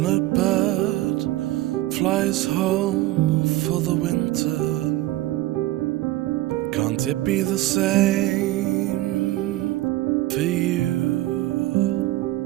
bird flies home for the winter. Can't it be the same for you?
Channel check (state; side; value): quieter; left; 16.6 dB